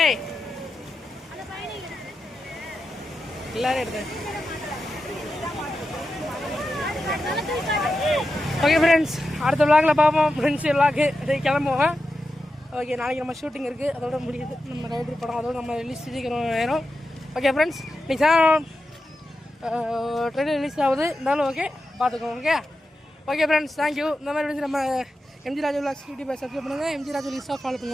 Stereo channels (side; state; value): both; normal; correlation 0.90